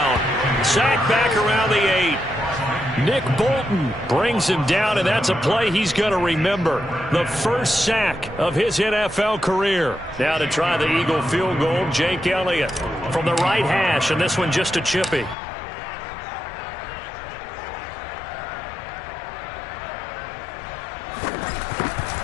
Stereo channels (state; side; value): drops out; right; at 15.4 s